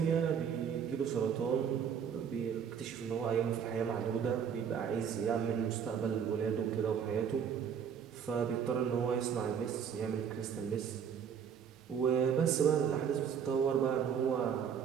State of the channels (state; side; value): quieter; left; 7.6 dB